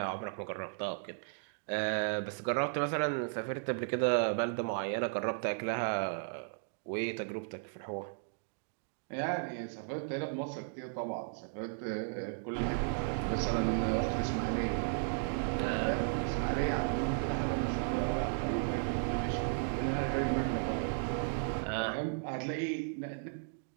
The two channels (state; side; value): silent; left; digital silence